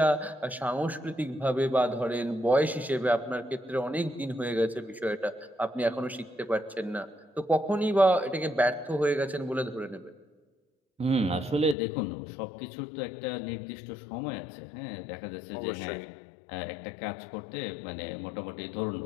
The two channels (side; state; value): right; drops out; at 11.8 s